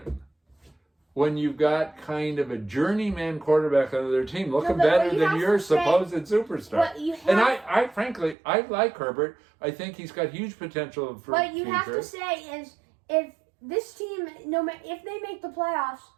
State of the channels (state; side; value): drops out; left; at 8.3 s